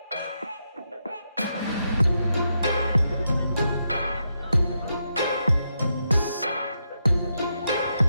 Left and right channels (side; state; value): both; inverted; correlation -0.83